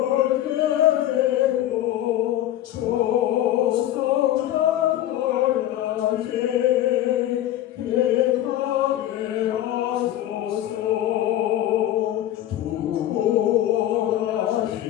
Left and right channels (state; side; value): quieter; right; 12.8 dB